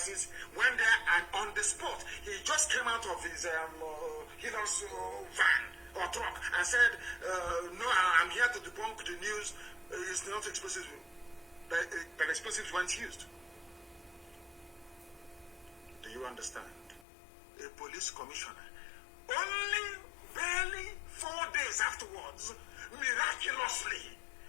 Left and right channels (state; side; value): drops out; right; at 17.1 s